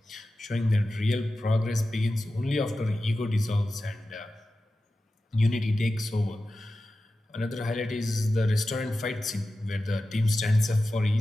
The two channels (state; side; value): normal; both; correlation 0.93